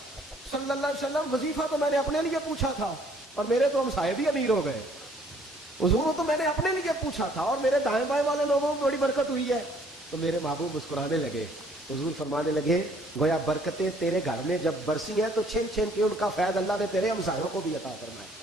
صلی اللہ علیہ وسلم وظیفہ تو میں نے اپنے لیے پوچھا تھا اور میرے تو ہمسائے بھی امیر ہو گئے. حضور تو میں نے اپنے لیے پوچھا تھا اور میرے دائیں بائیں والے لوگوں کو بڑی برکت ہوئی ہے. تو میرے محبوب مسکرانے لگے. حضور فرمانے لگے گویا برکتیں تیرے گھر میں جب برسی ہیں تو چھن چھن کے ان کا فیض اللہ نے تیرے ہمسایوں کو بھی عطا کرنا ہے.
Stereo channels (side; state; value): both; normal; correlation 0.61